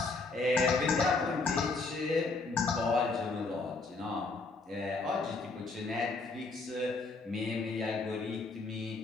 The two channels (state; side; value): quieter; right; 3.7 dB